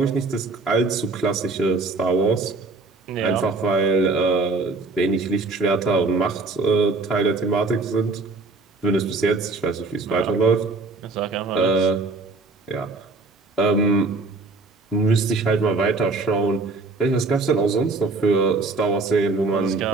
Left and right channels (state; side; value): quieter; left; 3.7 dB